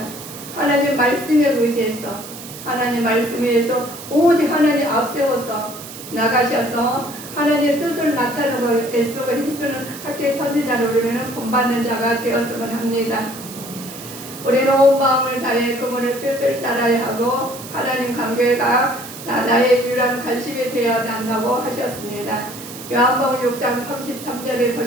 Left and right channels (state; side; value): noise; right; hiss, 13 dB below the sound